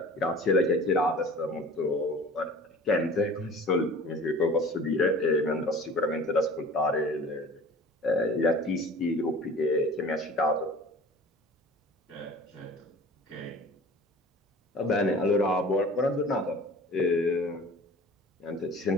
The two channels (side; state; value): both; normal; correlation 0.43